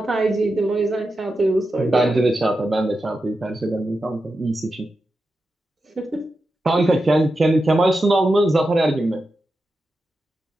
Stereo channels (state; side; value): normal; both; correlation 0.90